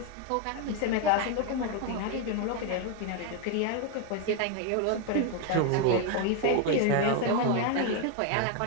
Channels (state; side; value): different; both; correlation 0.01